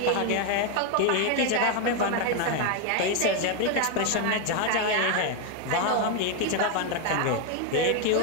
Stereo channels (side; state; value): both; different; correlation 0.01